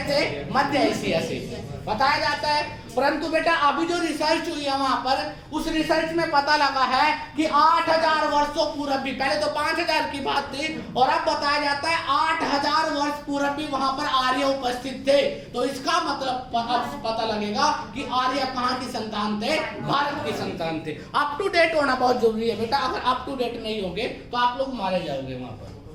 थे? मध्य एशिया से बताया जाता है। परंतु बेटा अभी जो रिसर्च हुई है वहां पर, उस रिसर्च में पता लगा है कि 8000 वर्षों पूर्व भी, पहले तो 5000 की बात थी और अब बताया जाता है 8000 वर्ष पूर्व भी वहां पर आर्य उपस्थित थे। तो इसका मतलब पता लगेगा कि आर्य कहाँ की संतान थे? भारत की संतान थे। अप टू डेट होना बहुत जरूरी है बेटा। अगर अप टू डेट नहीं होंगे तो आप लोग मारे जाओगे वहां पर।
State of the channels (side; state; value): both; identical; correlation 1.00